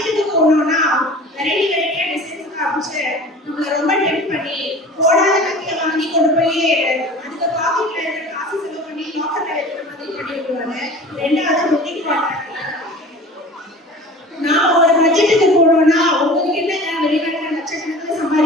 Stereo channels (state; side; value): normal; both; correlation 0.41